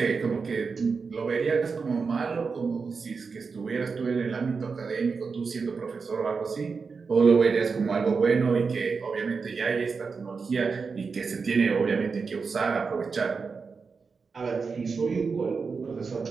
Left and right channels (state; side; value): quieter; left; 5.0 dB